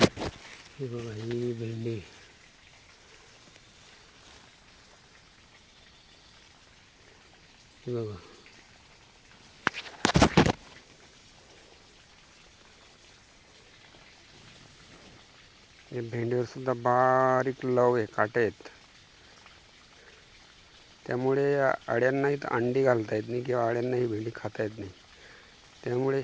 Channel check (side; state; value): both; identical; correlation 1.00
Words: बघा ही भेंडी बघा. या भेंडीवर सुद्धा बारीक लव आहे, काटे आहेत. त्यामुळे अळ्यांनाही अंडी घालता येत नाही किंवा अळ्यांनाही भेंडी खाता येत नाही. त्यामुळे